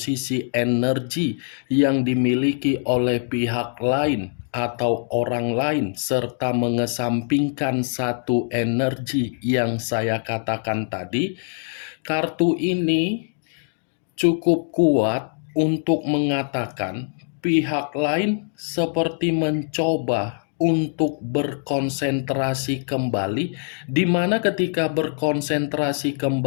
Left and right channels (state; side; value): silent; right; digital silence